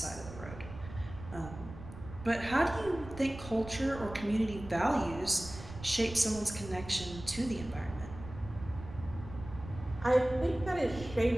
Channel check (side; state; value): right; noise; rumble, 13 dB below the sound